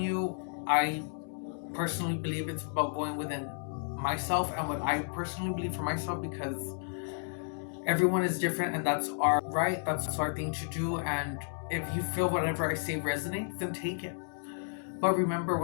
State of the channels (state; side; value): silent; right; digital silence